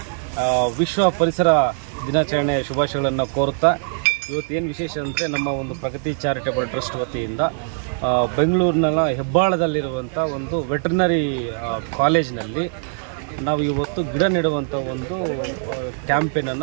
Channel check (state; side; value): silent; left; 65 dB below the other